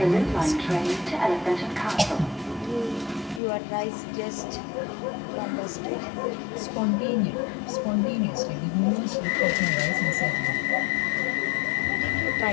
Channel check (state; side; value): drops out; right; at 3.4 s